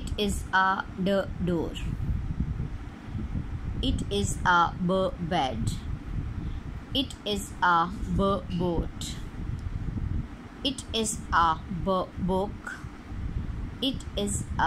is a door. It is a bed. It is a boat. It is a book. It is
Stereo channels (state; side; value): identical; both; correlation 1.00